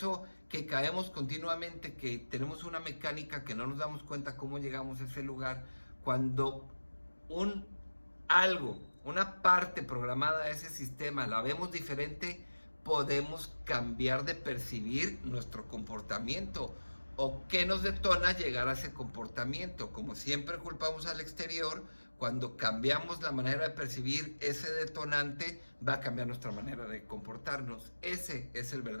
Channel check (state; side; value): inverted; both; correlation -1.00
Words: que caemos continuamente, que tenemos una mecánica que no nos damos cuenta cómo llegamos a ese lugar, cuando una parte programada de ese sistema la vemos diferente, podemos cambiar de percibir nuestro comportamiento. ¿O qué nos detona llegar a ese comportamiento? Como siempre culpamos al exterior, cuando cambiamos la manera de percibir ese detonante, va a cambiar nuestra manera de comportarnos. Ese es el